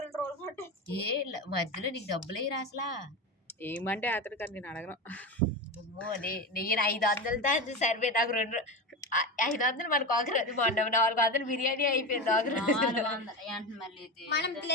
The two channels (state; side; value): normal; both; correlation 0.21